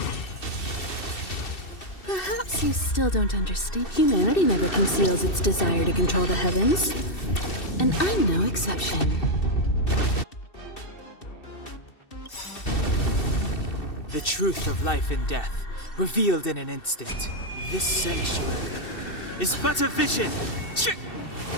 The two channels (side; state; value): right; late; 2.7 ms